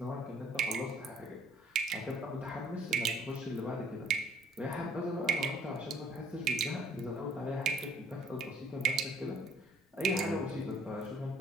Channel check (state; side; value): normal; both; correlation 0.58